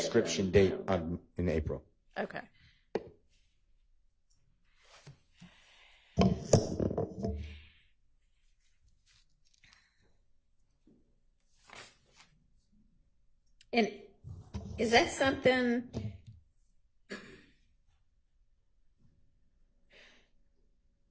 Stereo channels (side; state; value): both; identical; correlation 1.00